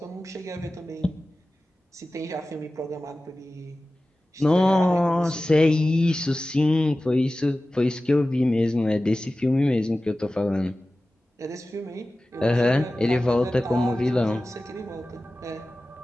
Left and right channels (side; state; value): both; normal; correlation 0.96